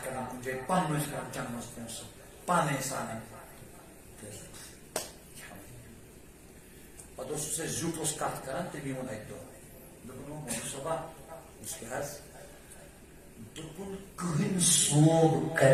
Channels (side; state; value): both; identical; correlation 1.00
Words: کران کن جائے پن کران جنمس پونس پانے سان پتہ زیوٹ کت کران تمی وون اک دہ دون صبح اس کے حض دپن کہن صوب